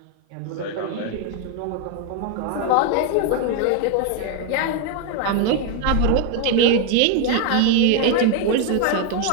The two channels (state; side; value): different; both; correlation 0.01